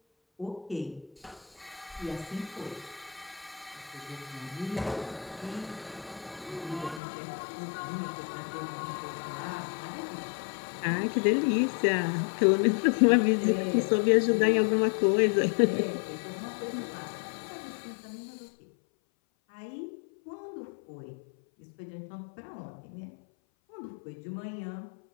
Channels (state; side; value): drops out; right; at 7.0 s